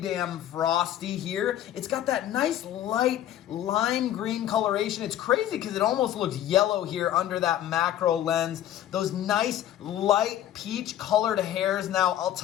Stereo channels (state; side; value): quieter; right; 11.9 dB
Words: damn frosty here. It's got that nice light lime green coloration. It's crazy because it almost looks yellow here under that macro lens. Those nice light peach colored hairs. Now, I'll